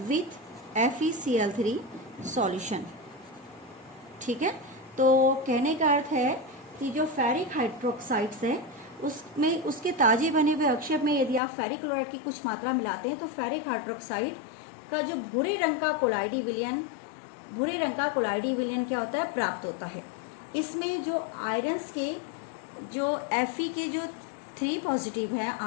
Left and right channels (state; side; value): drops out; right; at 11.4 s